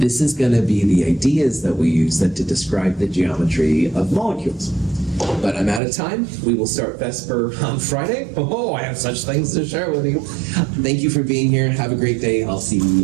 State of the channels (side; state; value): left; drops out; at 5.8 s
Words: is going to be the ideas that we use then to describe the geometry of molecules. But I'm out of time. We will start VESPER on Friday. Oh, I have such things to share with you. Thank you for being here. Have a great day. I'll see